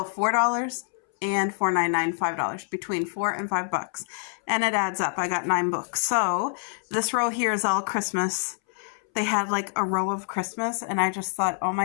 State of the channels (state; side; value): silent; right; 61 dB below the other